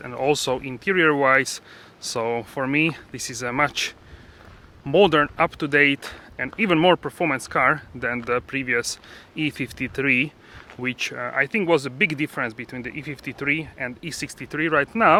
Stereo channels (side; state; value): both; identical; correlation 1.00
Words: also interior wise. So for me this is a much modern, up-to-date and even more performance car than the previous E53, which I think was a big difference between the E53 and E63. Right